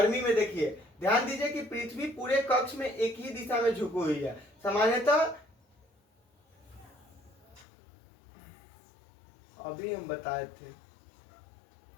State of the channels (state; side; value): drops out; right; at 7.7 s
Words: में देखिए, ध्यान दीजिए कि पृथ्वी पूरे कक्ष में एक ही दिशा में झुकी हुई है। सामान्यतः अभी हम बताए थे,